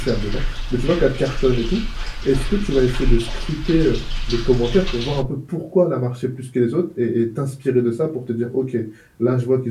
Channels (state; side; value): identical; both; correlation 1.00